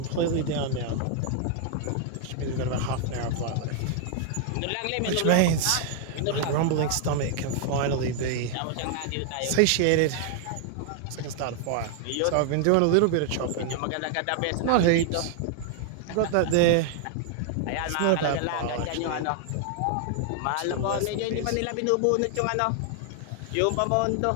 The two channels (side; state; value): both; different; correlation 0.00